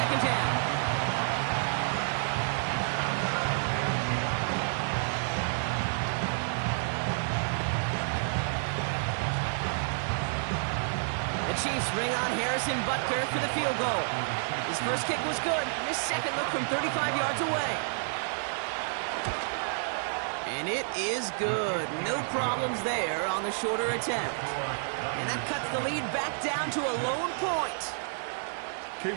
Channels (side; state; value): left; silent; digital silence